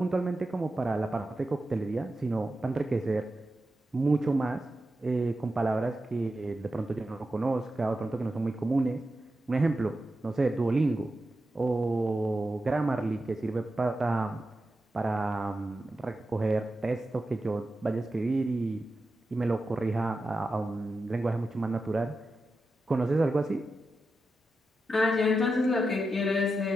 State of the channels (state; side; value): normal; both; correlation 0.90